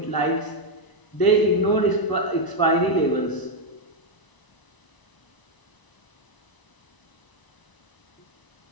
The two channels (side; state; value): right; late; 1.0 ms